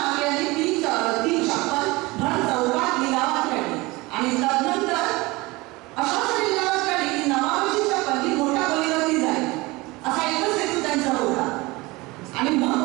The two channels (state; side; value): quieter; left; 22.5 dB